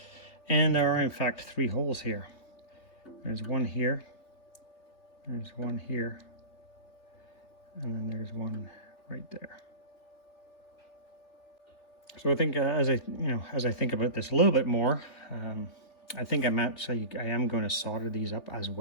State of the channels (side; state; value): right; late; 3.4 ms